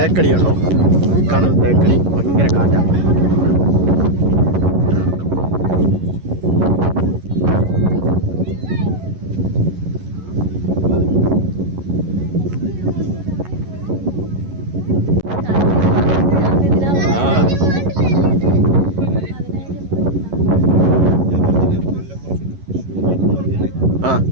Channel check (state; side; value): late; left; 11 ms